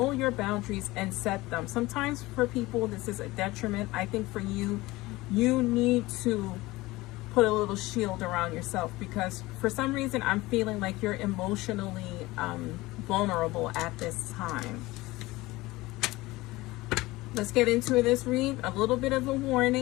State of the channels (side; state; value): right; quieter; 19.9 dB